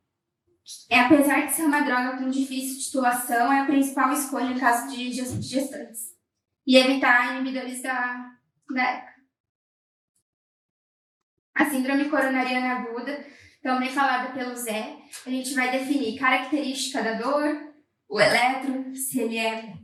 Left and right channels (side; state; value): both; identical; correlation 1.00